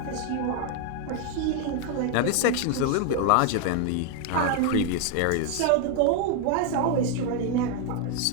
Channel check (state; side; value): different; both; correlation 0.01